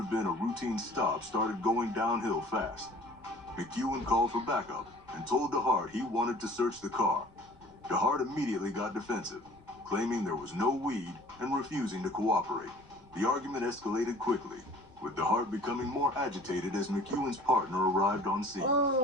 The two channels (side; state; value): left; noise; rumble, 27 dB below the sound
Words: been a routine stop started going downhill fast. McEwen called for backup and told DeHart he wanted to search the car. DeHart immediately got defensive, claiming there was no weed and refusing to cooperate. The argument escalated quickly, with DeHart becoming more agitated as McEwen's partner arrived on scene.